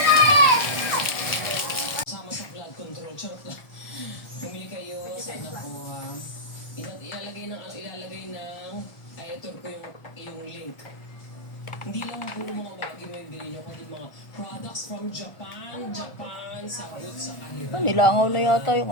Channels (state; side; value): late; right; 1.4 ms